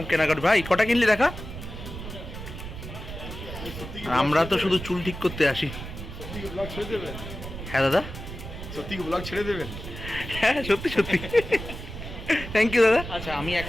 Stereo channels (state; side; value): noise; right; rumble, 10 dB below the sound